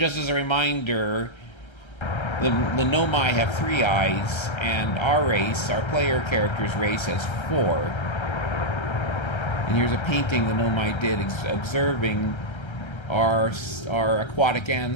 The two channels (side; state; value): right; late; 1.3 ms